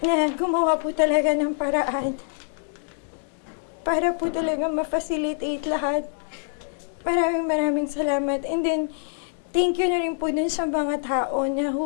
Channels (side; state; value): right; silent; digital silence